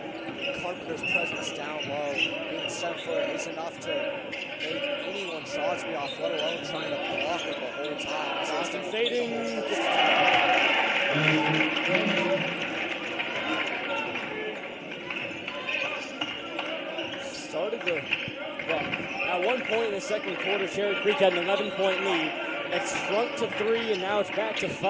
Carpenter's presence down low, being 7 foot, is enough to make anyone shots be off, let alone trying to block it the whole time. Johnson fading. Started the, well, at one point in the second quarter, Cherry Creek had an 11-point lead. It shrunk to 3, and now it's back to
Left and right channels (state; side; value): identical; both; correlation 1.00